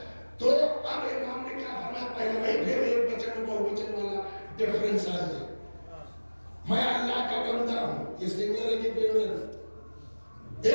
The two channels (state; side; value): inverted; both; correlation -1.00